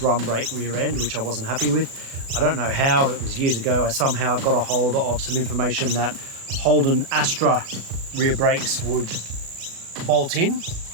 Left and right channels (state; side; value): late; left; 36 ms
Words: brake rear end, which I wasn't happy with. I don't know how, it was years ago. I somehow got a hold of some information that Holden Astra rear brakes would bolt in.